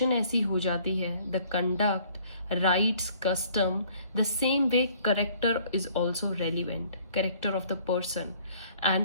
ऐसी हो जाती है, the conduct, rights, custom, the same way character is also relevant, character of the person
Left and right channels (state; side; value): inverted; both; correlation -0.58